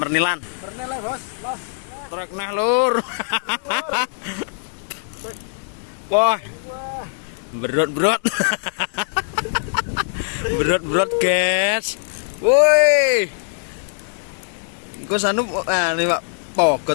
bos. Los. Trek nah lur. Wah. Berot. Berot guys. Woi. Engko sanu nih Pak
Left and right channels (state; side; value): silent; right; digital silence